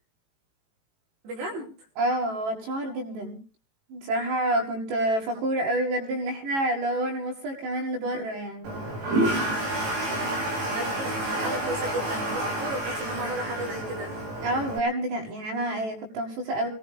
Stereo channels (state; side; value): late; left; 18 ms